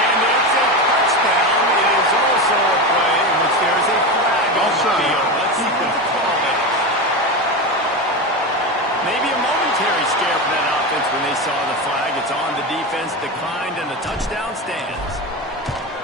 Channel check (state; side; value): normal; both; correlation 0.20